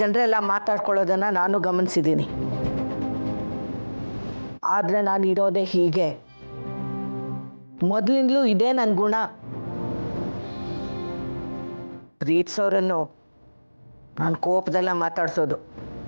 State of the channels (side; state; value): both; inverted; correlation -1.00